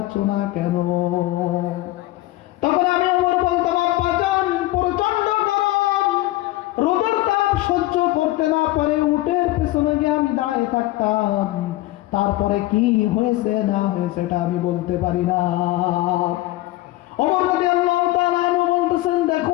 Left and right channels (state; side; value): quieter; right; 17.6 dB